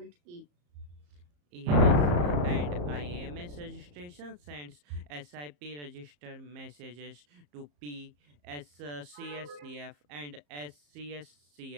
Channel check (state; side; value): late; left; 34 ms